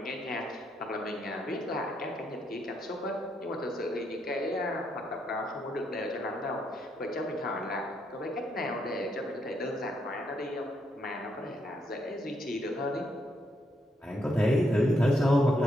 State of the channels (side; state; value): both; normal; correlation 0.77